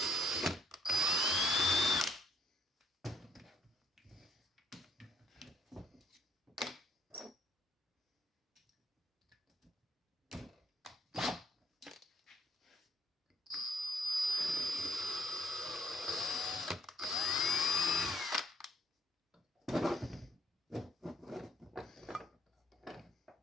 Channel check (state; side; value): normal; both; correlation 0.66